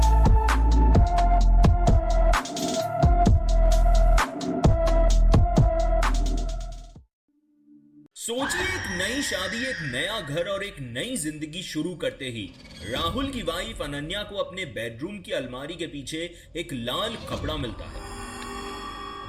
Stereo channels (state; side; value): identical; both; correlation 1.00